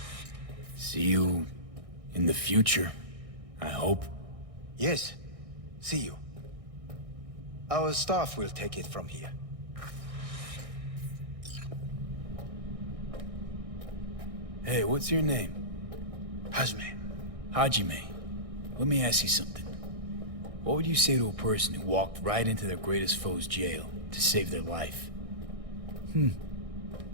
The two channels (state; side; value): late; left; 1.6 ms